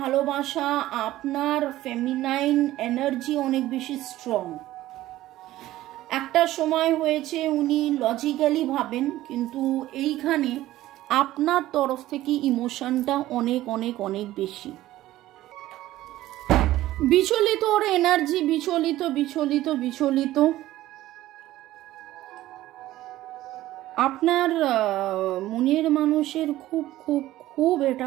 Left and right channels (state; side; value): quieter; left; 15.3 dB